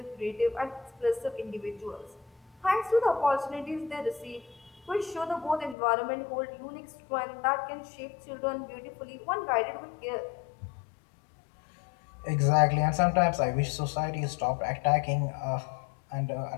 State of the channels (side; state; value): right; drops out; at 5.8 s